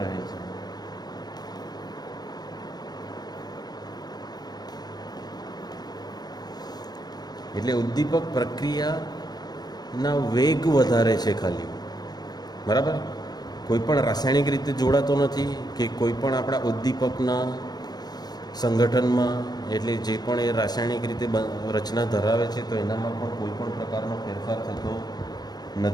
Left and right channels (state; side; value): late; right; 0.19 ms